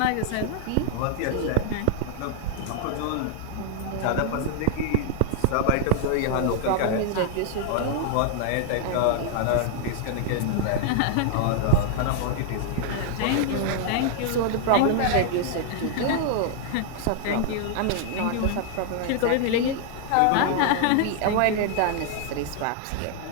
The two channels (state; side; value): different; both; correlation -0.01